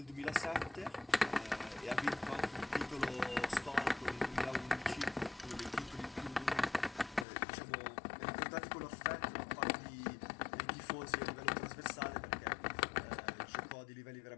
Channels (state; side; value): drops out; right; at 7.2 s